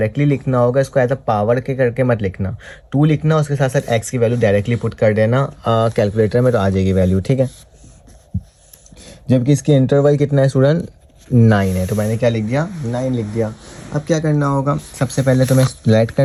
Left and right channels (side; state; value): both; identical; correlation 1.00